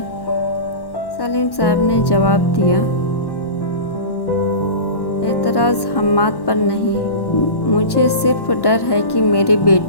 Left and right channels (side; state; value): right; late; 1.1 ms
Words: सलीम साहब ने जवाब दिया, एतराज़ हम्माद पर नहीं, मुझे सिर्फ डर है कि मेरी